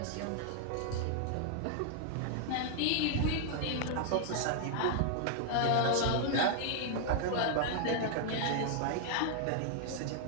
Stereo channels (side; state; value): both; different; correlation 0.00